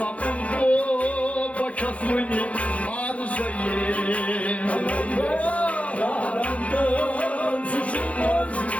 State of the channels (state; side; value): late; right; 0.065 ms